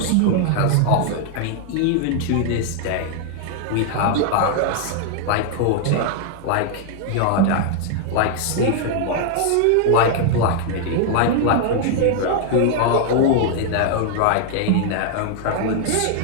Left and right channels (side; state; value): both; different; correlation 0.00